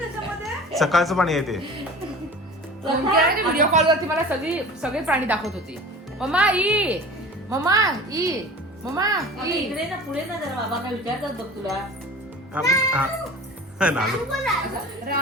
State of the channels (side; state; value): both; normal; correlation 0.39